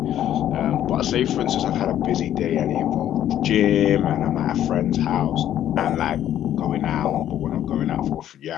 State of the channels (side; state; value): right; quieter; 11.4 dB